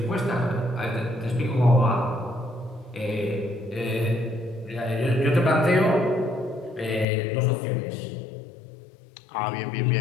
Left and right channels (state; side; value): drops out; right; at 7.1 s